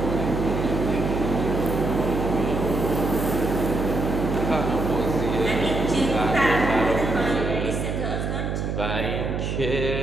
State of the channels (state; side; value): noise; right; hum, 2 dB below the sound